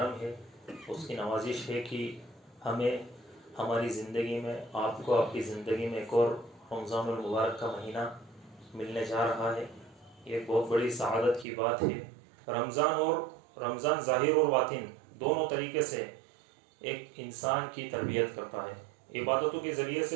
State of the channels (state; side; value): drops out; left; at 11.5 s